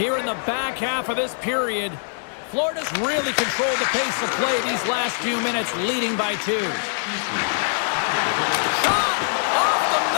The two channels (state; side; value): silent; right; digital silence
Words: in the back half of this period, Florida's really controlled the pace of play these last few minutes, leading by 2. Shot off the